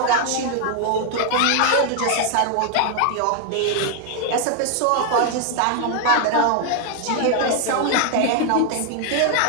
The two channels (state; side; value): different; both; correlation 0.00